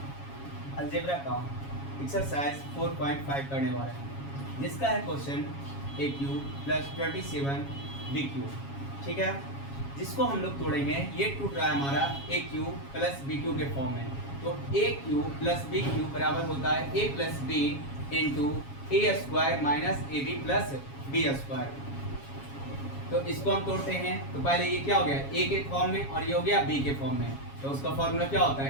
अलजेब्रा का एक्सरसाइज 4.5 करने वाले हैं, जिसका है क्वेश्चन ए क्यू प्लस 27 बी क्यू। ठीक है, जिसको हम लोग तोड़ेंगे। ये टूट रहा है हमारा A cube plus B cube के फॉर्म में। तो A cube plus B cube बराबर होता है A plus B into A square minus A B plus B square. तो इसको हम तोड़ते हैं। तो पहले ये क्या हो गया, ए के फॉर्म में, और ये हो गया बी के फॉर्म में। तो उसका फॉर्मूला क्या होता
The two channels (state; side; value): late; right; 7.3 ms